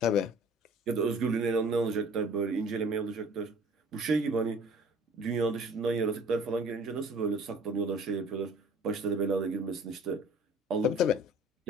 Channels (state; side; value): normal; both; correlation 0.50